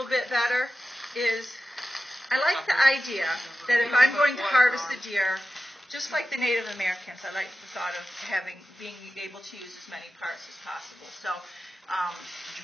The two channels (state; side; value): normal; both; correlation 0.93